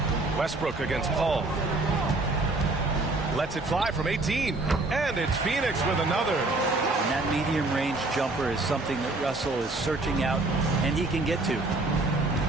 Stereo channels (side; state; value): left; quieter; 3.0 dB